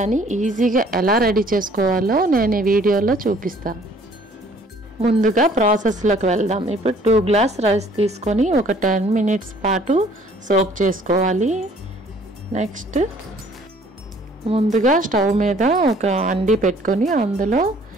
ఈజీగా ఎలా రెడీ చేసుకోవాలో నేను ఈ వీడియోలో చూపిస్తాను. ముందుగా ప్రాసెస్లోకి వెళ్దాం. ఇప్పుడు 2 గ్లాస్ రైస్ తీసుకొని ఒక 10 మినిట్స్ పాటు సోక్ చేసుకోవాలి. నెక్స్ట్ ముందుగా స్టవ్ మీద ఒక అండి పెట్టుకొని అందులో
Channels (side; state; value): both; normal; correlation 0.57